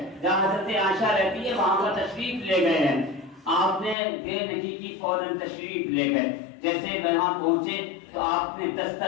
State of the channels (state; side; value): drops out; right; at 4.0 s